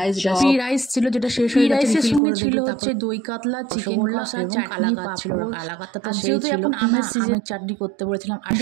পি রাইস ছিল যেটা শেষ হয়ে গেছে, রাইসের সঙ্গে ছিল হচ্ছে দই কাতলা, চিকেন কষা, চাটনি, পাঁপড়, কালাকাতা। তো যেহেতু এখন আমের সিজনে চাটনি করতে বলেছিলাম, আর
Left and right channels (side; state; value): left; drops out; at 2.2 s